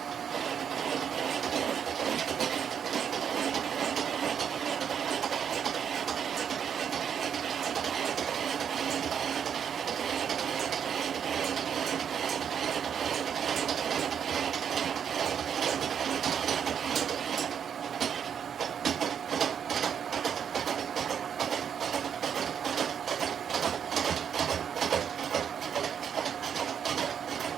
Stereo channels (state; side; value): quieter; left; 8.0 dB